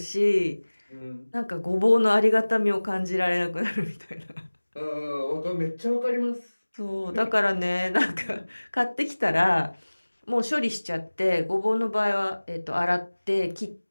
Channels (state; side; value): inverted; both; correlation -1.00